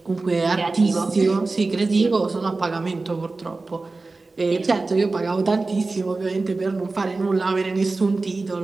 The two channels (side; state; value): left; quieter; 3.6 dB